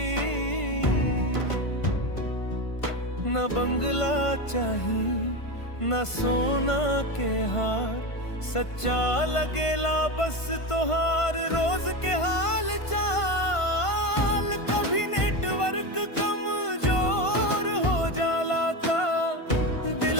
न बंगला चाही न सोना के हार, सच्चा लगेला बस तोहार रोज के हाल चाल। कभी नेटवर्क कमजोर हो जाला ता दिल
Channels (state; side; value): late; right; 1.5 ms